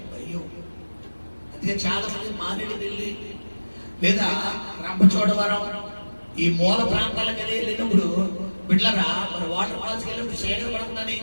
అయ్యో. అందుకే చాలా మంది మారేడుమిల్లి లేదా రంపచోడవరం ఈ మూల ప్రాంతాలకు వెళ్ళినప్పుడు బిడ్డలరా మన వాటర్ ఫాల్స్ వెళ్ళినప్పుడు చీకటి పడకుండా ఏం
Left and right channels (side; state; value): both; inverted; correlation -1.00